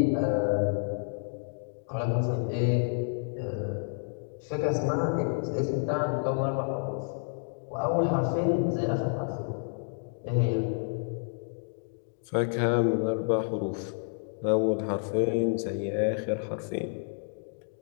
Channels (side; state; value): right; silent; digital silence